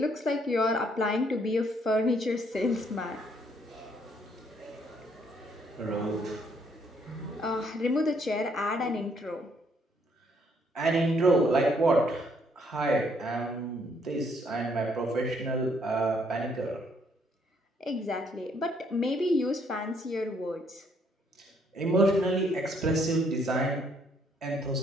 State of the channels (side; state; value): both; normal; correlation 0.68